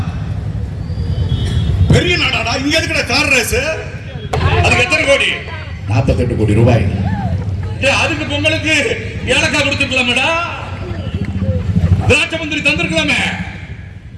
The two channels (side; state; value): both; identical; correlation 1.00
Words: பெரிய நாடாடா. இங்க இருக்கிற கார் ரேஸ் அதுக்கு எத்தனை கோடி? 48 கோடி ரூபாய். அதுக்கு பொங்கலுக்கு ஏலக்காய் கொடுத்துக்கலாமேடா, திராட்சை மந்திரி தந்திருக்கலாமே.